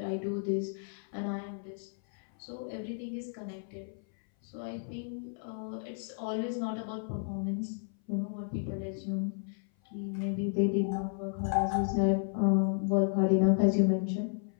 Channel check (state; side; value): silent; right; 56 dB below the other